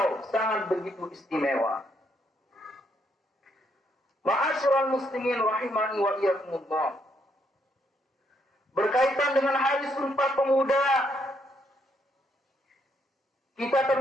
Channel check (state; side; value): normal; both; correlation 0.74